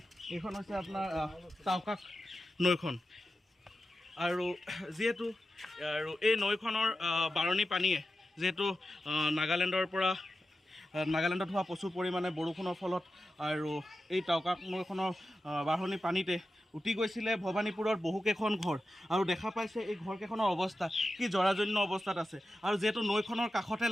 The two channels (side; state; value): both; normal; correlation 0.92